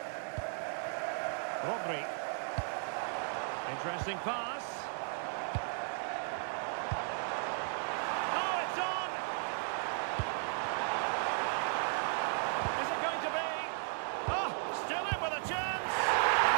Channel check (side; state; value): left; silent; 54 dB below the other